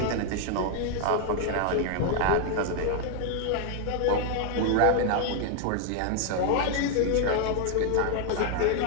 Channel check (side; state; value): both; different; correlation 0.00